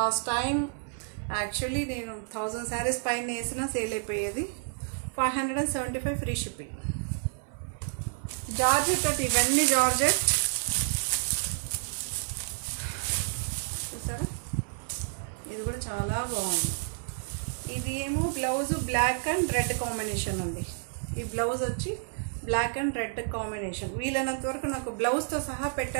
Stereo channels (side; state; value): left; silent; 58 dB below the other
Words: టైం యాక్చువల్లీ నేను 1000 శారీస్ పైన వేసినా సేల్ అయిపోయేది. 575 ఫ్రీ షిప్పింగ్. జార్జెట్ అంటే ఇవన్నీ జార్జెట్ చూసారా, ఇది కూడా చాలా బాగుంది. ఇది ఏమో blouse black and red combination ఉంది. ఈ బ్లౌజ్ వచ్చి బ్లాక్ అండ్ రెడ్ కాంబినేషన్. వీలైనంత వరకు నాకు బ్లౌజ్తో సహా